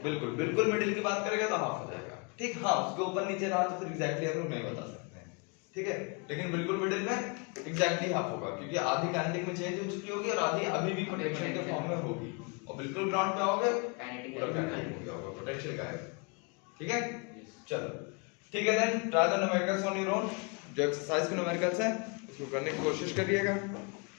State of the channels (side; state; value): right; quieter; 33.2 dB